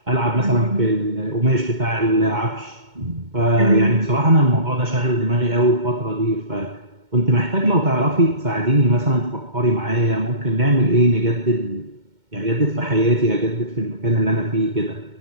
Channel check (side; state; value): left; late; 2.2 ms